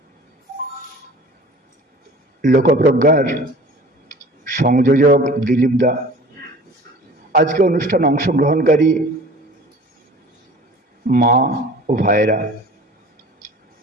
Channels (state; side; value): normal; both; correlation 0.44